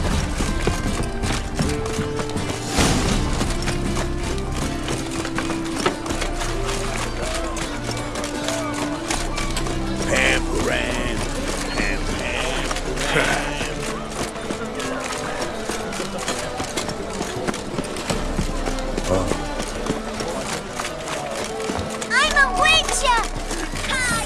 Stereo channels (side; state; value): both; identical; correlation 1.00